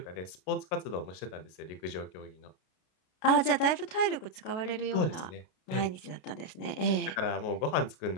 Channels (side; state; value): right; late; 32 ms